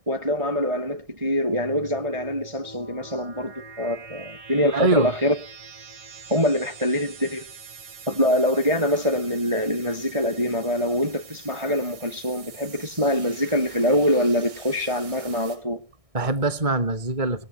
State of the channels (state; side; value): late; left; 1.6 ms